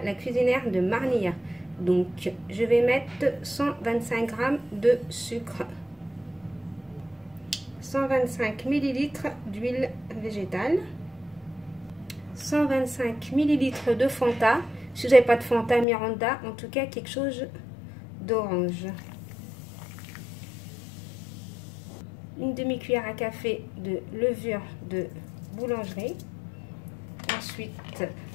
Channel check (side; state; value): right; drops out; at 15.9 s